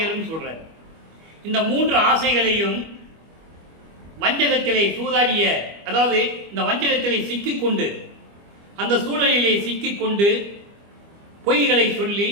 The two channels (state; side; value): late; left; 25 ms